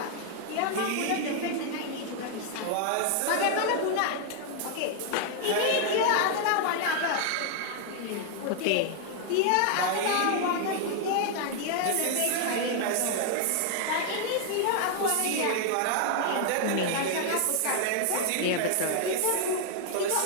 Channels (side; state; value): both; different; correlation 0.00